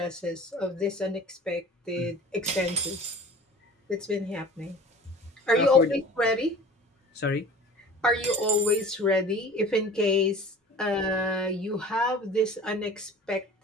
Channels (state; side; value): normal; both; correlation 0.43